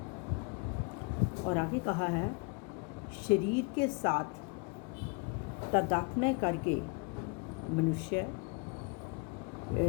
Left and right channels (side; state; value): right; quieter; 31.4 dB